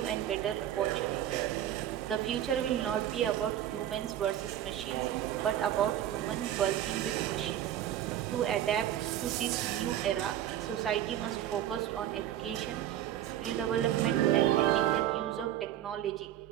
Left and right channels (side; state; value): left; quieter; 11.6 dB